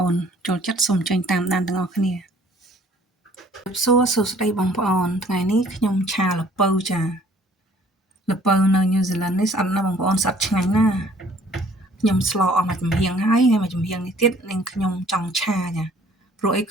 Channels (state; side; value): normal; both; correlation 0.57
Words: ូនចូលចិត្តសូមចេញតាមដានទាំងអស់គ្នាសួស្តីបងប្អូនថ្ងៃនេះខ្ញុំឆាល្ពៅចាល្ពៅនៅញូហ្សេឡង់នេះស្អិតណាស់បងប្អូនស្អិតឆ្ងាញ់ណាស់ខ្ញុំស្លអស់មួយចំហៀងហើយមួយចំហៀងនេះទៀតនាងខ្ញុំចង់ឆាចាព្រោះអី